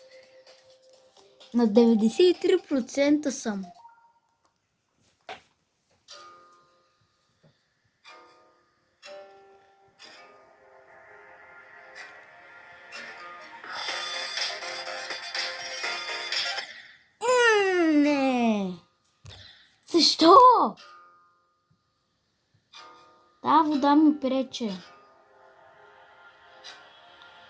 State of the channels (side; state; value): both; identical; correlation 1.00